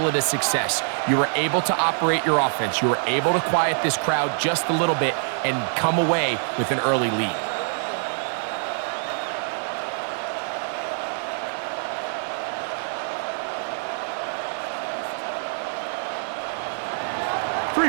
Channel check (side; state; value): left; silent; 62 dB below the other